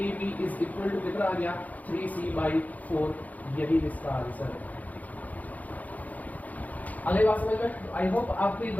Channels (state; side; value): late; right; 0.077 ms